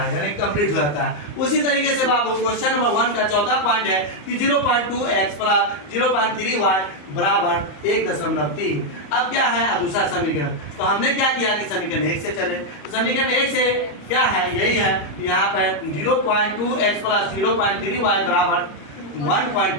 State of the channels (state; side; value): late; right; 34 ms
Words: यानी कंप्लीट हो जाता है। उसी तरीके से बाबू क्वेश्चन नंबर 1 का चौथा पॉइंट है कि 0.2x प्लस 0.3y बराबर 1.3। अब क्या है, अब दूसरा समीकरण। तो हमने क्या किया कि समीकरण 1 से चले। तो समीकरण 1 से क्या है, यही है, यहाँ पर 0.2x प्लस 0.3y बराबर